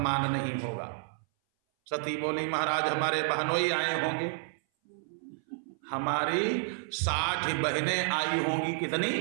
नहीं होगा। सती बोली महाराज हमारे बहनोई आए होंगे, हमारी 60 बहनें आई होंगी। कितनी?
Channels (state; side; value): silent; left; 58 dB below the other